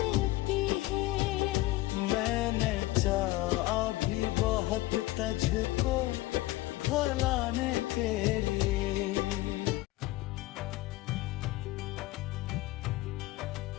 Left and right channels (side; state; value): right; quieter; 18.3 dB